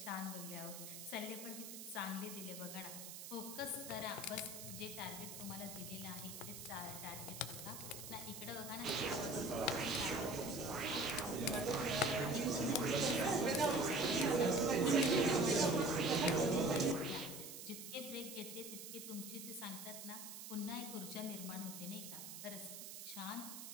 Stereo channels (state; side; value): noise; right; hiss, 10 dB below the sound